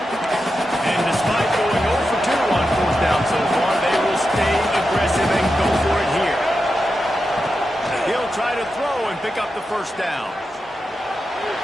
And despite going 0 for 2 on fourth down so far, they will stay aggressive and go for it here. He'll try to throw and pick up the first down.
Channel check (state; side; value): normal; both; correlation 0.89